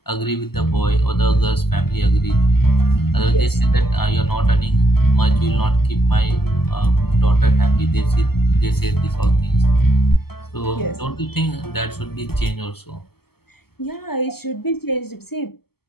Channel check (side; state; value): right; late; 0.96 ms